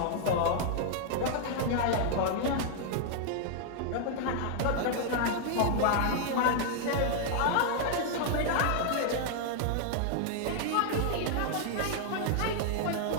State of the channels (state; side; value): different; both; correlation 0.00